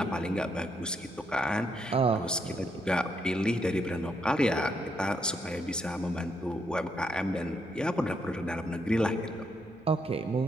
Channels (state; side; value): noise; right; hum, 29 dB below the sound